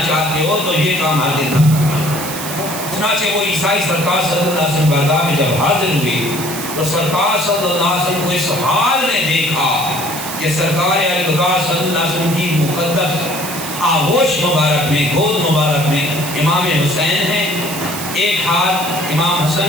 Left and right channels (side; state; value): right; noise; hiss, 8 dB below the sound